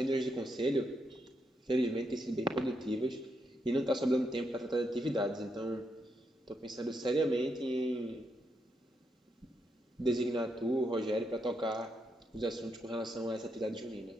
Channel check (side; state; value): both; normal; correlation 0.80